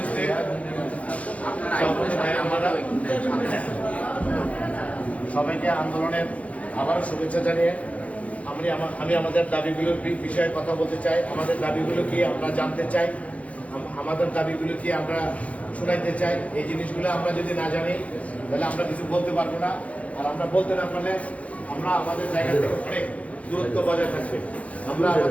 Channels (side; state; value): right; late; 0.066 ms